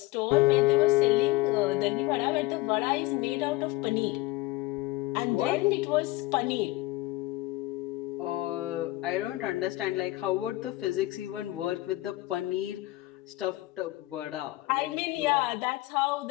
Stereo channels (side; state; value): right; quieter; 18.9 dB